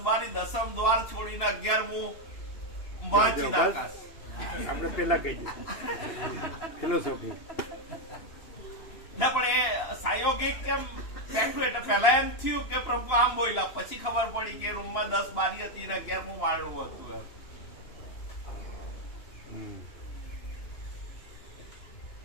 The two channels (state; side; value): late; right; 2.9 ms